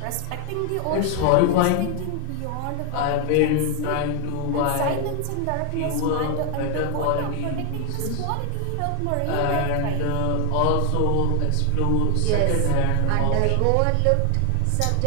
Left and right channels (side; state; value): both; different; correlation 0.00